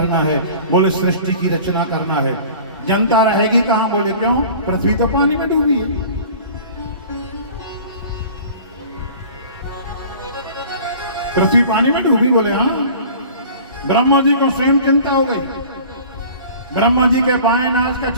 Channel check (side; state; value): both; inverted; correlation -0.44